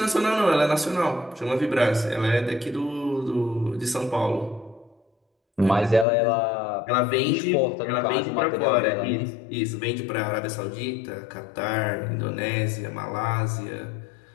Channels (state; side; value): drops out; right; at 6.1 s